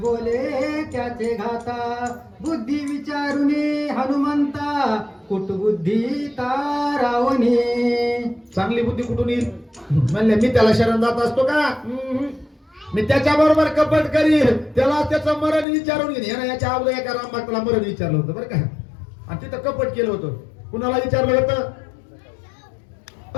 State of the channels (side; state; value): right; drops out; at 15.7 s